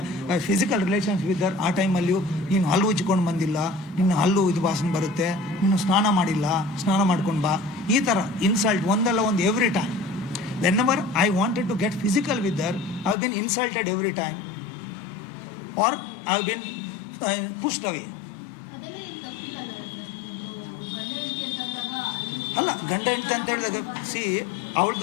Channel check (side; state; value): right; drops out; at 13.2 s